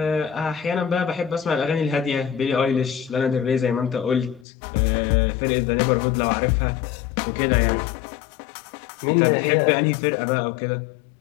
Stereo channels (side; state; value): right; drops out; at 4.5 s